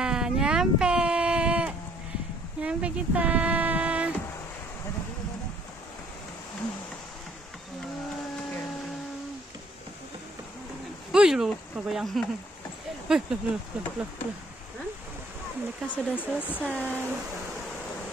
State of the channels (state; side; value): normal; both; correlation 0.62